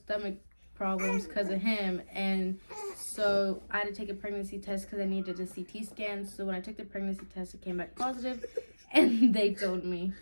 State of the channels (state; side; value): inverted; both; correlation -1.00